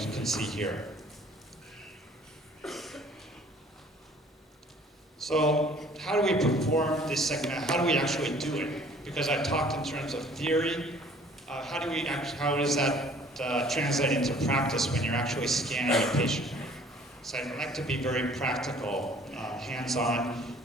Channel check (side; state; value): both; normal; correlation 0.54